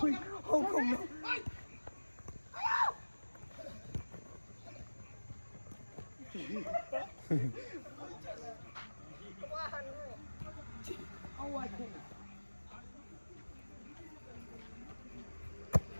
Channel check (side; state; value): both; inverted; correlation -1.00